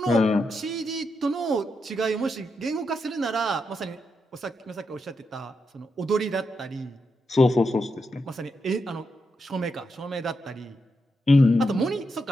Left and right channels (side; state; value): both; normal; correlation 0.84